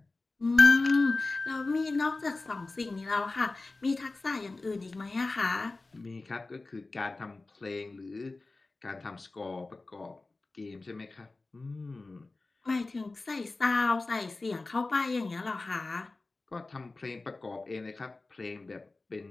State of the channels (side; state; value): right; quieter; 3.4 dB